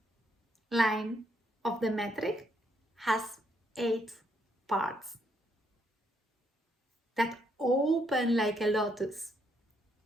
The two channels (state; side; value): normal; both; correlation 0.74